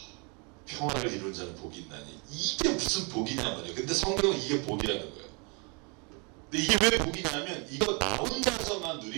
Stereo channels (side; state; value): left; quieter; 32.6 dB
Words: 평화를 이룬 자는 복이 있나니 이게 무슨 복이냐 말이에요. 근데 성경은 이게 복이라는 거예요. 근데 이게 왜 복이냐면 이거 나 혼자서만